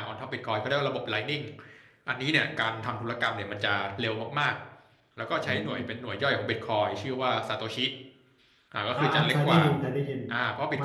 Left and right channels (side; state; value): both; identical; correlation 1.00